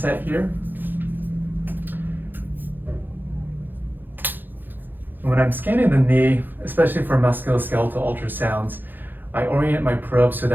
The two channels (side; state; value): left; late; 0.091 ms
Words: here. And when I'm scanning the knee, especially for musculoskeletal ultrasounds, I orient my probe so